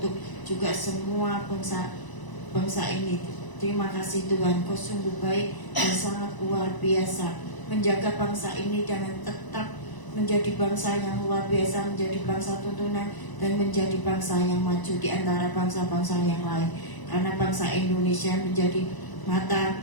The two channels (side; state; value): right; late; 1.0 ms